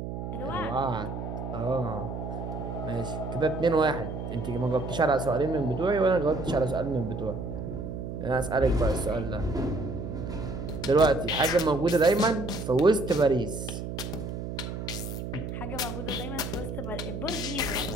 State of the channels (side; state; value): right; noise; hum, 6 dB below the sound